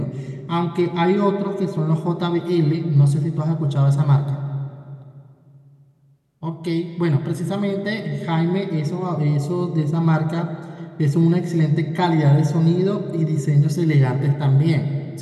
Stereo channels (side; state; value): both; identical; correlation 1.00